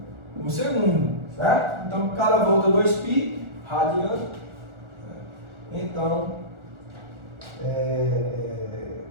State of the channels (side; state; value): left; late; 1.4 ms